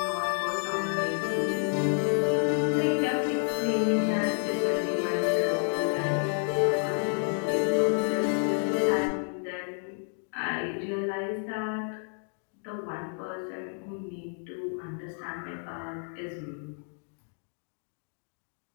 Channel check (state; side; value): silent; right; 58 dB below the other